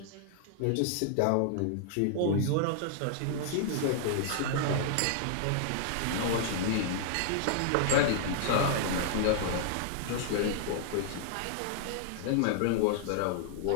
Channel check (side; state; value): both; different; correlation -0.01